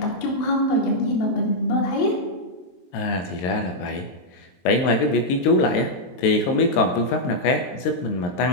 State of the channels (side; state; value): right; late; 23 ms